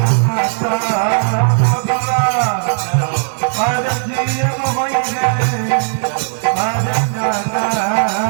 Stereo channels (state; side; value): silent; left; digital silence